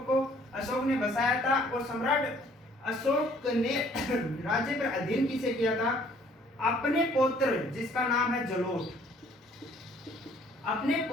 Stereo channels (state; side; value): normal; both; correlation 0.60